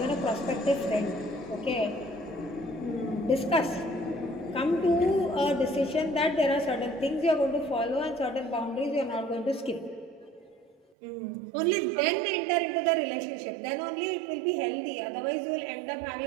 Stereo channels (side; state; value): left; drops out; at 10.8 s